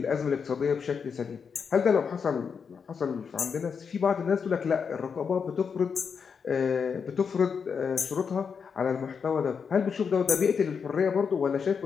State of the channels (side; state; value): right; quieter; 6.2 dB